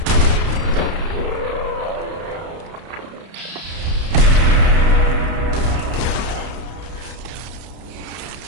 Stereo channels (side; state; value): left; late; 31 ms